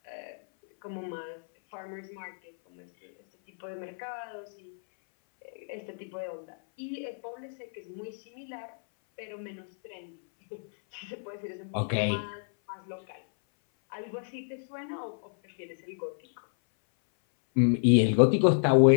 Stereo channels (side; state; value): right; silent; 58 dB below the other